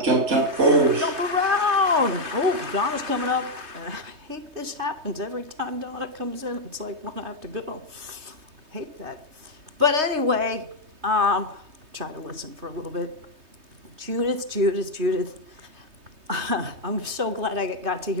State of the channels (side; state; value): left; late; 3.2 ms